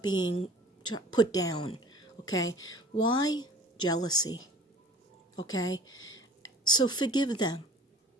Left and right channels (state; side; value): normal; both; correlation 0.47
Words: put down. Okay? Why? Jealousy. Okay? So forgive them.